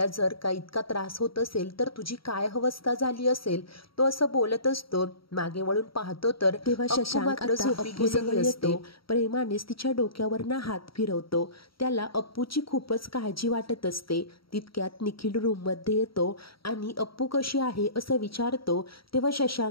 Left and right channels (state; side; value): late; right; 0.75 ms